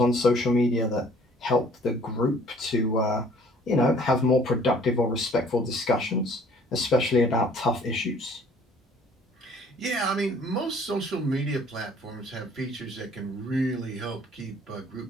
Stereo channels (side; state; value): both; normal; correlation 0.56